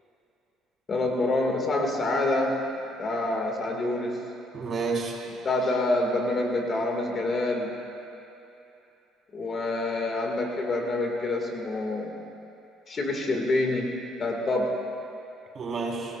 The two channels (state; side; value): normal; both; correlation 0.71